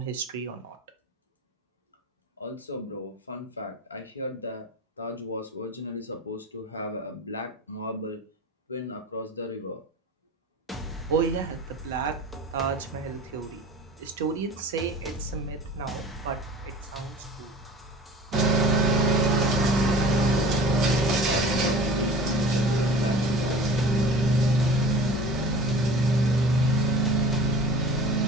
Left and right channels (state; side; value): normal; both; correlation 0.40